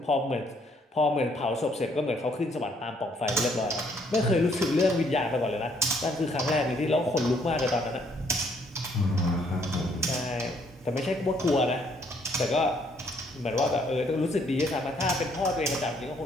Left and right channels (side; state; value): both; normal; correlation 0.67